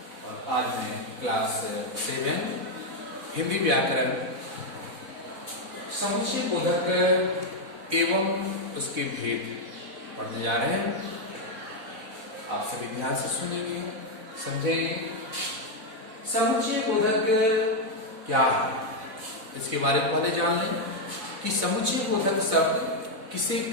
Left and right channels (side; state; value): left; late; 4.1 ms